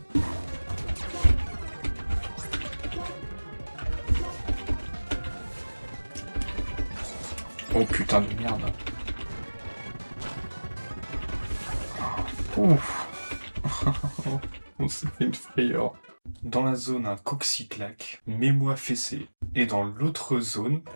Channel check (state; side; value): inverted; both; correlation -1.00